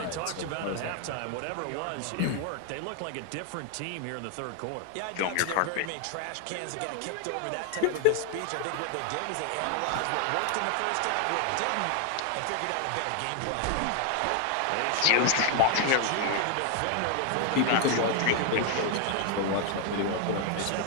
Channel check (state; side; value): different; both; correlation 0.00